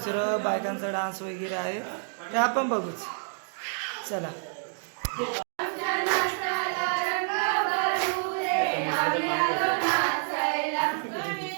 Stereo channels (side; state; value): left; silent; 59 dB below the other